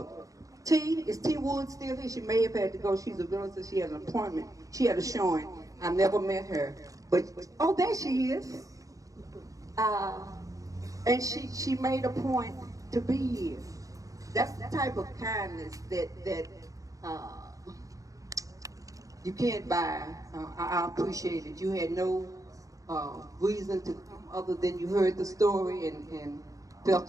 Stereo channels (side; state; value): left; late; 0.16 ms